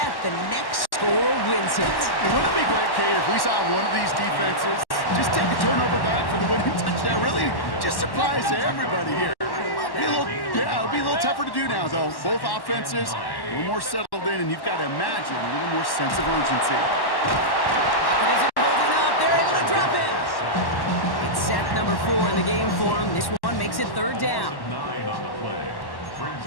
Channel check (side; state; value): right; late; 1.1 ms